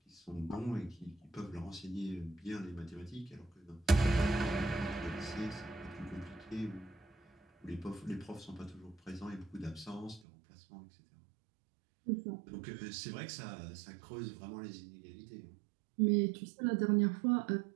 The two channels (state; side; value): drops out; left; at 10.2 s